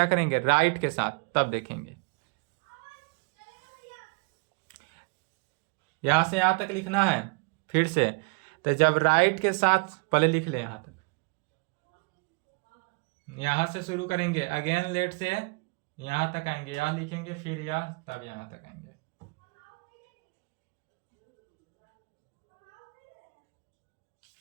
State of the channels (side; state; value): left; quieter; 31.6 dB